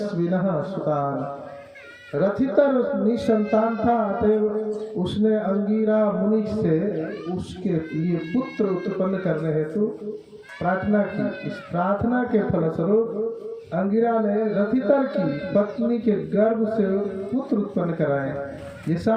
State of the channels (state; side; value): identical; both; correlation 1.00